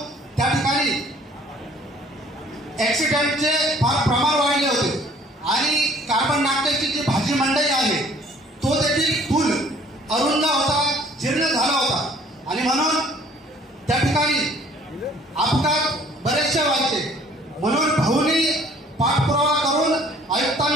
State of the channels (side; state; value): both; normal; correlation 0.56